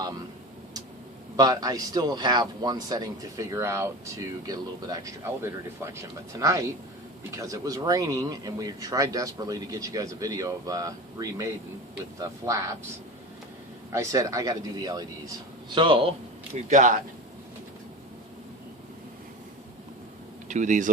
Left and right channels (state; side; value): normal; both; correlation 0.30